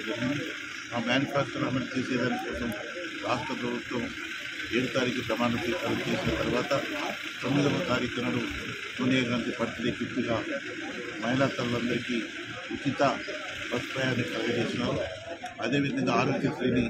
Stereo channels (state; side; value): identical; both; correlation 1.00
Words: జరిగింది. ఆ మేనిఫెస్టోను అమలు చేసేదాని కోసం రాష్ట్ర ప్రభుత్వం 7వ తారీఖు ప్రమాణ స్వీకారం చేసిన తర్వాత 9వ తారీఖు నాడు సోనియా గాంధీ బర్త్డే గిఫ్ట్గా మహిళా తల్లులందరికీ ఉచిత బస్ ప్రయాణం కలుగజేసినారు. అదేవిధంగా ఆరోగ్యశ్రీని